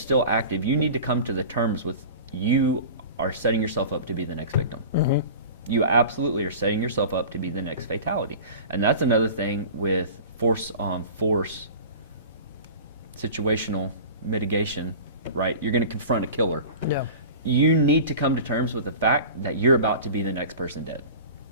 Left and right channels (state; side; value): inverted; both; correlation -0.37